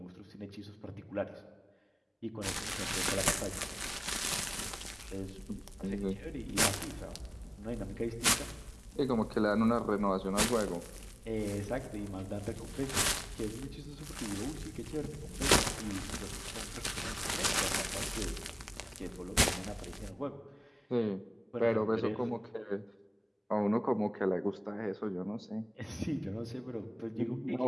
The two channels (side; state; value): both; identical; correlation 1.00